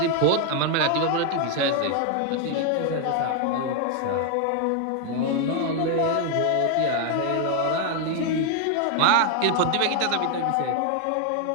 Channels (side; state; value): both; different; correlation 0.00